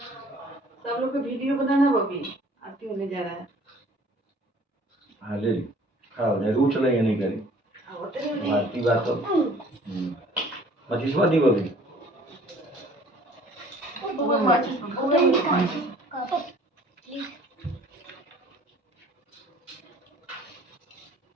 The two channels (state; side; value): normal; both; correlation 0.53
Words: सब लोग को वीडियो बनाना बबी, आरती होने जा रहा है। हाँ ले खड़ा हो जाए, रू चलाइए नहीं करी आरती बात तो 25वां दी बबी